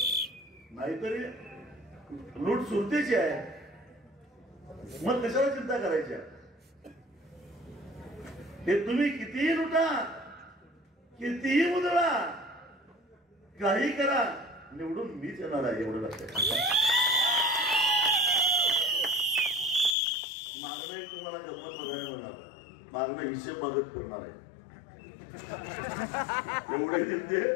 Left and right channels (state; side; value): drops out; right; at 20.0 s